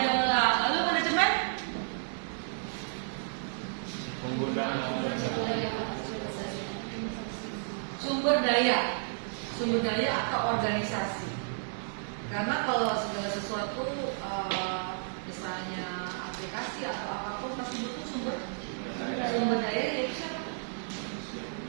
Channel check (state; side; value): silent; left; digital silence